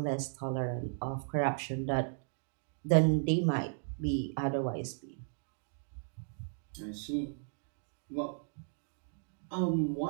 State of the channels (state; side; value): silent; left; digital silence